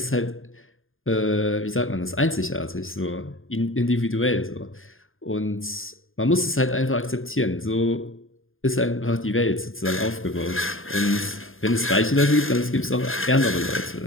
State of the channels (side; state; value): right; late; 0.59 ms